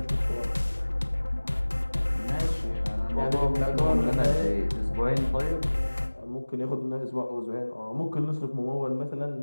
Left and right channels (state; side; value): inverted; both; correlation -1.00